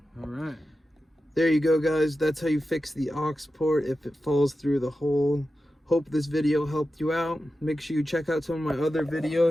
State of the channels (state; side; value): normal; both; correlation 0.92